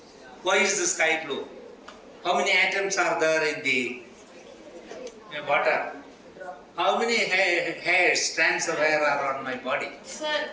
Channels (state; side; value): identical; both; correlation 1.00